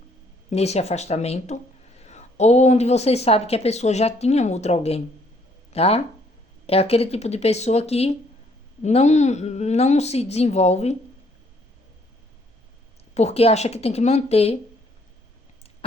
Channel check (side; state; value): both; normal; correlation 0.65